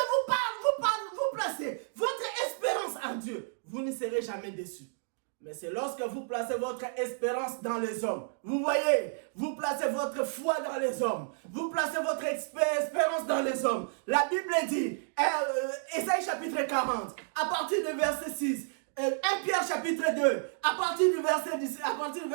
placez votre espérance en Dieu, vous ne serez jamais déçus. Mais c'est lorsque vous placez votre espérance dans les hommes. Vous voyez, vous placez votre foi dans les hommes. Vous placez votre espérance dans les hommes. La Bible dit, Ésaïe chapitre 40, à partir du verset 6, 1 Pierre chapitre 2, à partir du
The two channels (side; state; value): left; silent; digital silence